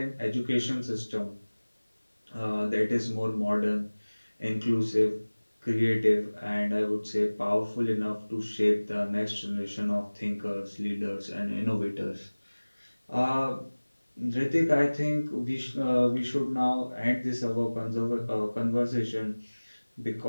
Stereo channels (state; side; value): inverted; both; correlation -1.00